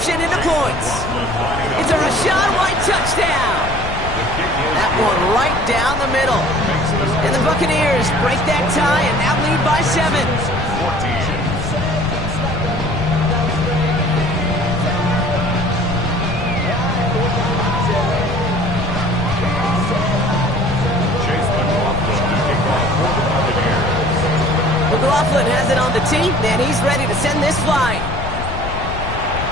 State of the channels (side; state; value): left; noise; rumble, 7 dB below the sound